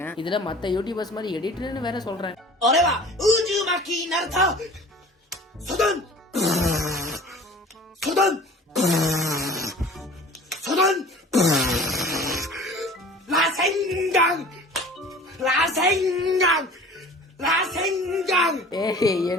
இதுல மத்த யூடியூபர்ஸ் மாதிரி எடிட்டர்னு வேற சொல்றேன்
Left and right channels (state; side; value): normal; both; correlation 0.44